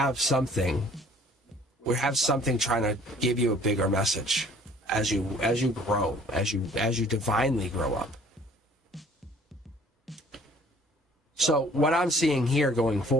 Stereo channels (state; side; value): normal; both; correlation 0.55